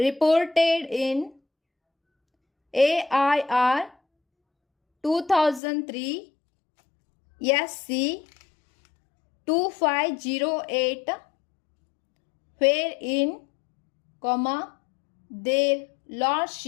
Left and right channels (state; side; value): drops out; right; at 5.6 s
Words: in AIR 2003 SC 2508, wherein, comma, their